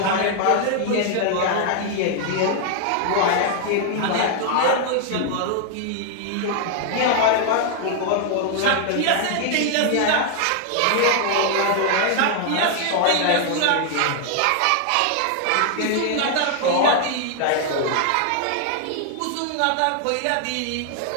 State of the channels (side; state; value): both; different; correlation 0.00